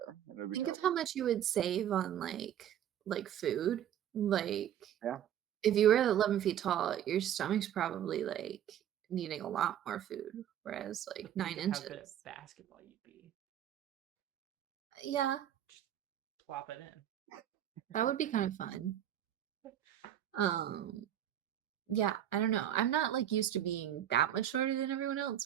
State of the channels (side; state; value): left; quieter; 10.7 dB